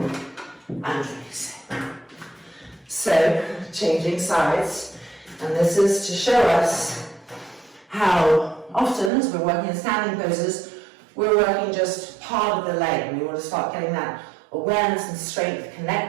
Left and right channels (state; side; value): drops out; left; at 9.1 s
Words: and release it. So, changing sides, and this is to show us how often, as we're working in standing poses, we're working just part of the leg. We want to start getting that awareness and strength